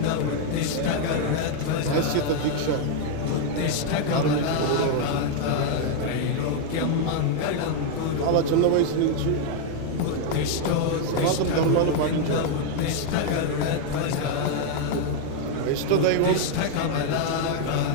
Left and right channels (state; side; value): different; both; correlation 0.00